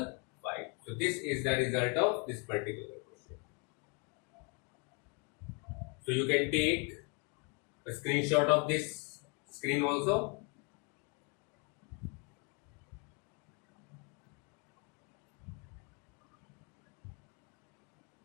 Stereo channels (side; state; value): right; quieter; 34.6 dB